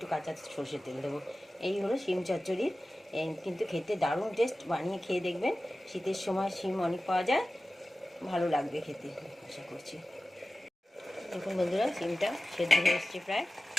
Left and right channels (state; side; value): normal; both; correlation 0.95